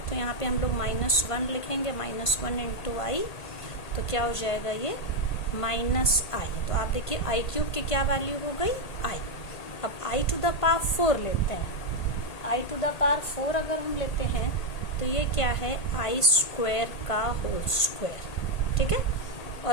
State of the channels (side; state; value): right; late; 1.5 ms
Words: तो यहाँ पे हम लोग माइनस वन लिखेंगे, माइनस वन इंटू आई। तो क्या हो जाएगा ये? Minus i. तो आप देखिए आई क्यूब की क्या वैल्यू हो गई? आई। अब आई टू द पावर फोर लेते हैं। I to the power four अगर हम लेते हैं तो ये क्या है? आई स्क्वायर का होल स्क्वायर, ठीक है।